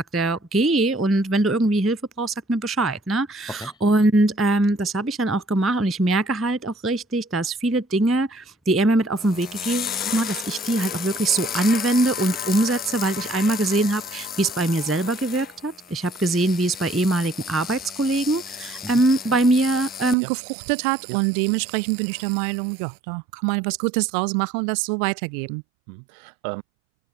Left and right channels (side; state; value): left; drops out; at 20.2 s